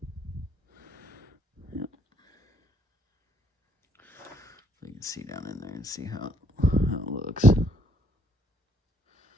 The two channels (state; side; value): normal; both; correlation 0.68